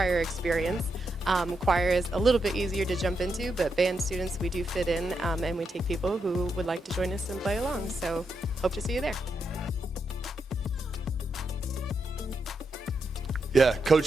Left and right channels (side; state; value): both; normal; correlation 0.83